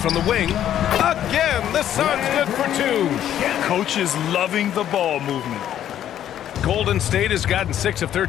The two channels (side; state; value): right; quieter; 10.9 dB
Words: the wing. Again, the Suns good for 2. Coach is loving the ball movement. Golden State has gotten 6 of